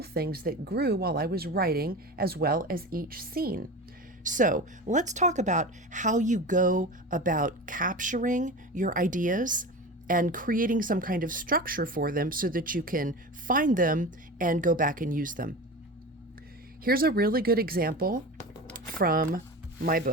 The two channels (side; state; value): both; normal; correlation 0.29